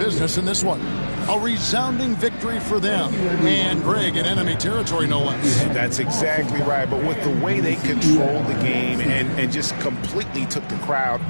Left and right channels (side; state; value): both; inverted; correlation -1.00